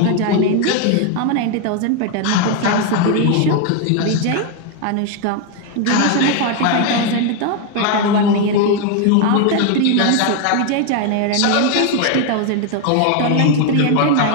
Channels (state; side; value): different; both; correlation 0.01